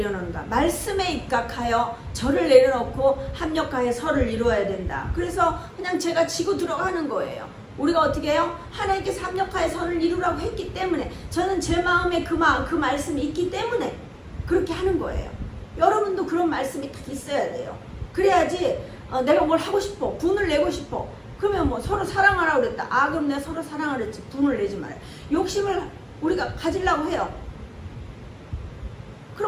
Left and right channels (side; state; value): both; identical; correlation 1.00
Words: 말씀에 입각하여 저를 내려놓고 합력하여 설을 이루어야 된다. 그래서 그냥 제가 지고 들어가는 거예요. 우리가 어떻게 해요? 하나님께서 합력하여 선을 이루라고 했기 때문에 저는 제 마음에 그 말씀이 있기 때문에 그렇게 하는 거예요. 여러분도 그런 말씀이 딱 있어야 돼요. 그래야지 내가 뭘 하고 싶어. 분을 내고 싶어. 그러면 뭐 서로 사랑하라고 그랬다. 그럼 내가 서로 사랑을 했지. 분을 내지 말아요. 욕심을 우리가 가지려고 해요.